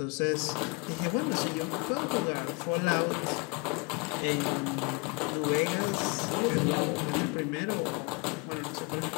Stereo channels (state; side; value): quieter; right; 30.1 dB